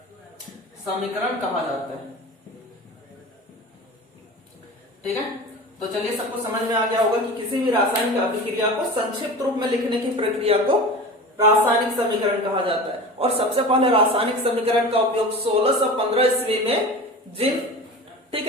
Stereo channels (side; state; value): both; normal; correlation 0.33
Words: समीकरण कहा जाता है। ठीक है, तो चलिए सबको समझ में आ गया होगा कि किसी भी रासायनिक अभिक्रिया को संक्षिप्त रूप में लिखने की प्रक्रिया को रासायनिक समीकरण कहा जाता है। और सबसे पहले रासायनिक समीकरण का उपयोग 1615 ईस्वी में